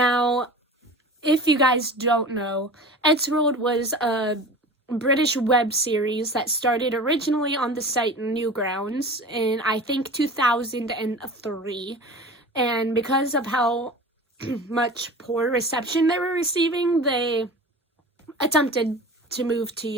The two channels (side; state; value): both; normal; correlation 0.37